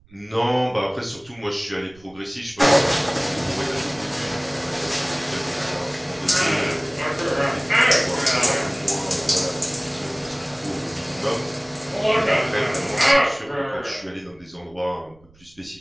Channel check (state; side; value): noise; right; rumble, 28 dB below the sound